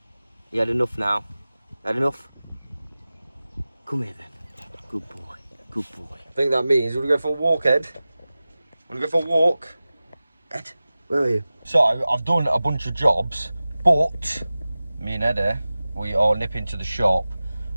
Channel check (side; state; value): both; inverted; correlation -0.97